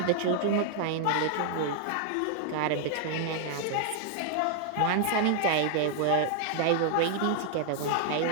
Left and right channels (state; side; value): different; both; correlation 0.00